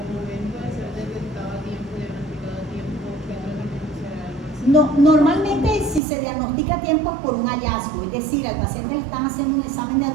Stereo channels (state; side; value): drops out; left; at 6.0 s